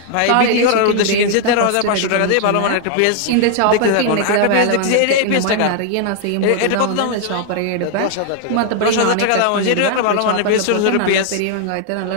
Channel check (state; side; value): different; both; correlation 0.00